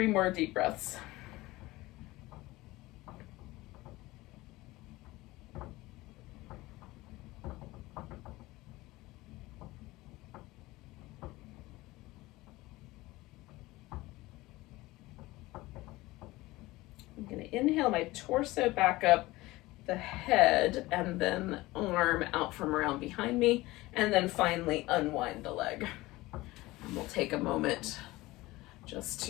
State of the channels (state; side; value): quieter; right; 19.5 dB